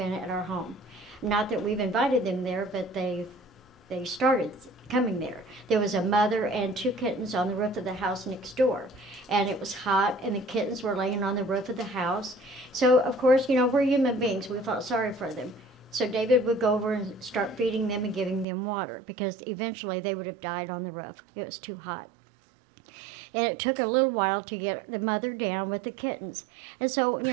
at our home. Not that we've invited them there, but they started coming there. There was a mother and 2 kittens on the roof of the house next door. And it was hot, and the kittens were laying on the roof of the house. So, of course, you know, we're human beings. We felt sorry for them. So David would go over and start feeding them and giving them water, because eventually they would have died on the roof. It was too hot. And it took a little while to get the mother down with the kittens. And so, you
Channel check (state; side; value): drops out; left; at 18.4 s